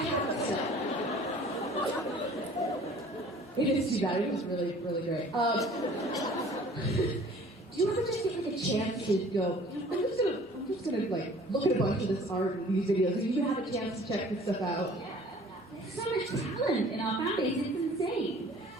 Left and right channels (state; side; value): normal; both; correlation 0.50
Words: it still. It is too bad. It was really, really great. Do you ever just get a chance to go, I'm just gonna look at a bunch of this art and these videos, and you have a chance to check this stuff out? Yeah. There's so much talent in our fan base. It's insane.